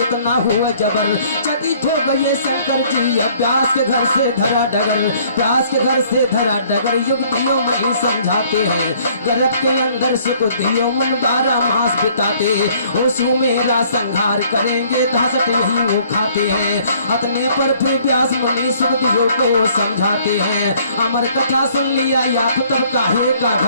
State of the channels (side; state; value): both; inverted; correlation -0.59